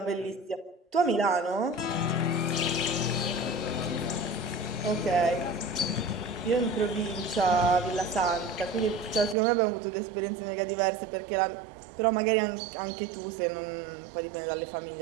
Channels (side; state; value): left; drops out; at 9.3 s